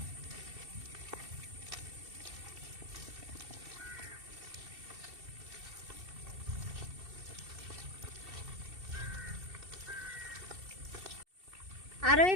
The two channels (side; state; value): left; late; 2.7 ms